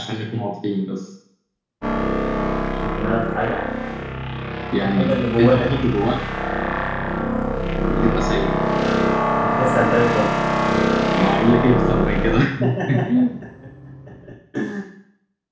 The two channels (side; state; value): both; identical; correlation 1.00